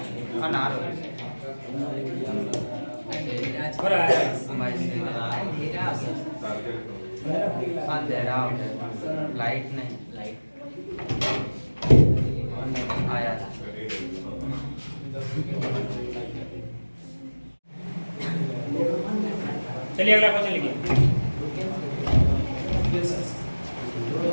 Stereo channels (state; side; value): inverted; both; correlation -1.00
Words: लाइट नहीं, लाइट आया था। चलिए अगला क्वेश्चन लिखिए।